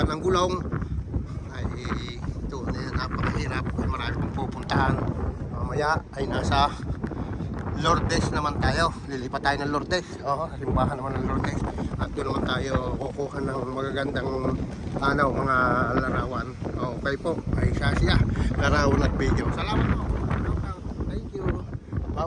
ng gulong. Ay ito na yan, napakahirap. Marami pong pupuntahan. Mamaya ay nasa Lourdes naman tayo. Lilipat tayo ng Lourdes. Oo, simbahan naman ng Lourdes. At doon naman tayo kukuha ng magagandang mga larawan. Okay po, ay siya. Larawan at video. Salamat po. Thank you.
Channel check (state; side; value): identical; both; correlation 1.00